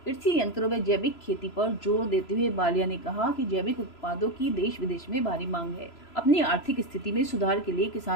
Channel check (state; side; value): late; right; 3.0 ms